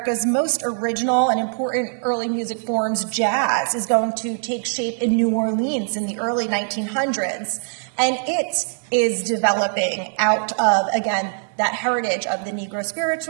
most original and important early music forms, jazz, is going to take shape in New Orleans in the early 1900s. And it is developing out of, again, that heritage of the Negro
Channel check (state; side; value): silent; left; 61 dB below the other